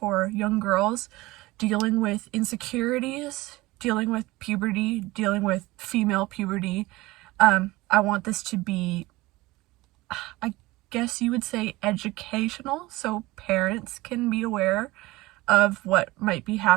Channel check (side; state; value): left; quieter; 20.1 dB